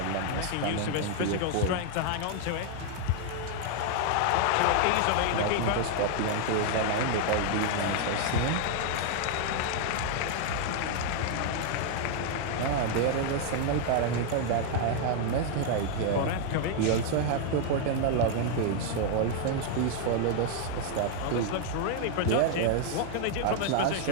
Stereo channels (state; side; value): different; both; correlation 0.00